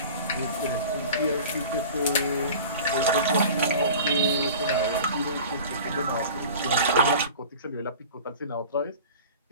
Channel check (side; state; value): both; inverted; correlation -0.40